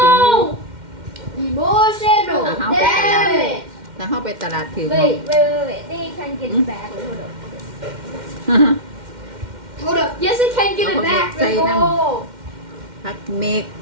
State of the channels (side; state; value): left; late; 2.1 ms